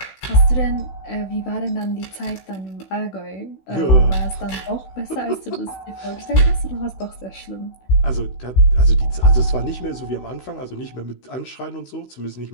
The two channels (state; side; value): late; right; 16 ms